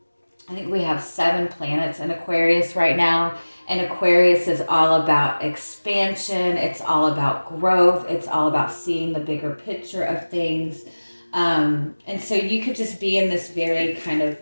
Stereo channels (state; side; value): inverted; both; correlation -1.00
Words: think we have 7 planets in Aquarius right now. And Aquarius is all about expansion. It's all about growth. It's all about seeing the bigger picture of things. And so you could just be in this very kind of